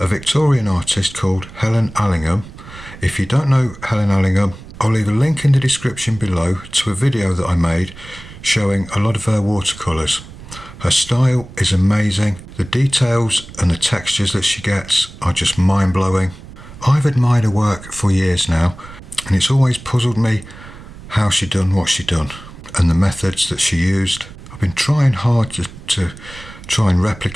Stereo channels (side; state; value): right; noise; rumble, 17 dB below the sound